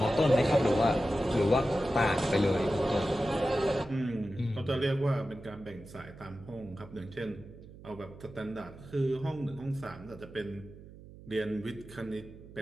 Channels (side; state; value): right; noise; hum, 18 dB below the sound